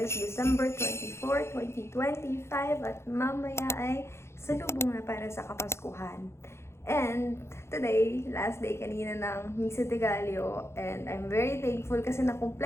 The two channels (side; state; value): right; late; 0.13 ms